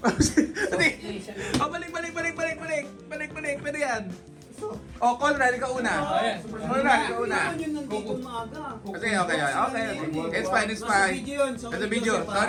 Balik. Pwede yan. Oh, Conrad, ikaw una. Conrad, ikaw una. Kailangan yun nandito maaga. Okay. It's fine. It's a video.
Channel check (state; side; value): identical; both; correlation 1.00